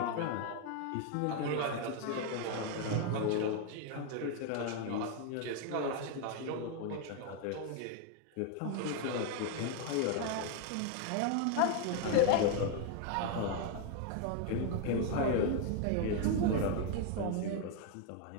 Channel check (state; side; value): different; both; correlation 0.01